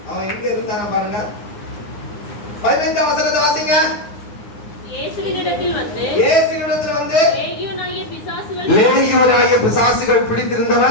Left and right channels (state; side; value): late; right; 9.7 ms